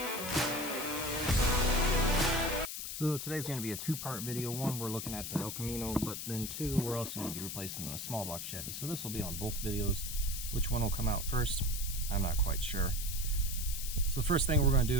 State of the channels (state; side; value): noise; left; hiss, 6 dB below the sound